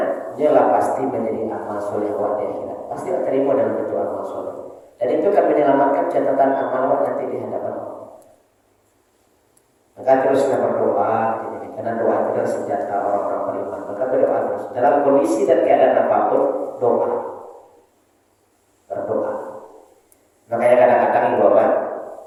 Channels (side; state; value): both; identical; correlation 1.00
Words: ialah pasti menjadi amal soleh awak di akhirat. Pasti akan terima dalam bentuk amal soleh. Dan itu akan menyelamatkan catatan amal awak nanti di hadapan Allah. Maka teruslah berdoa, karena doa itu adalah senjata orang-orang beriman. Maka berdoa terus dalam kondisi dan keadaan apapun, doa, berdoa. Makanya kadang-kadang ibu bapak,